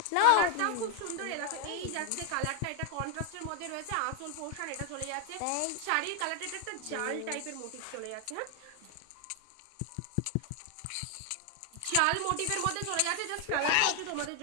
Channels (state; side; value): different; both; correlation 0.00